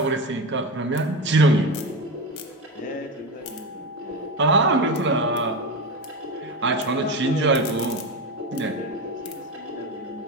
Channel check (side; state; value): both; normal; correlation 0.19